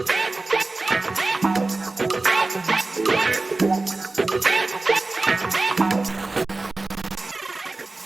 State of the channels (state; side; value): quieter; left; 3.3 dB